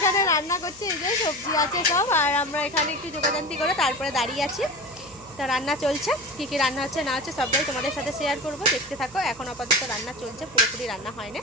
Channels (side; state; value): right; noise; hum, 23 dB below the sound